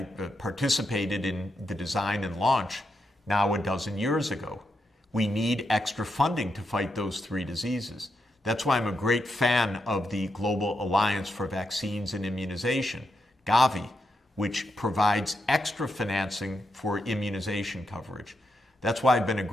in the design and launch now a dozen years ago. We need extra funding to fight those three diseases. That's why I'm a great fan of the Global Alliance for Vaccines and Immunization, Gavi, which provides extra financing for immunization coverage. That's why I've been a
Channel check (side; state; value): both; normal; correlation 0.83